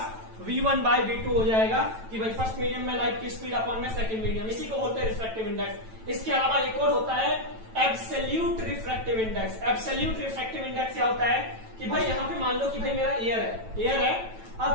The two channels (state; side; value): late; left; 9.1 ms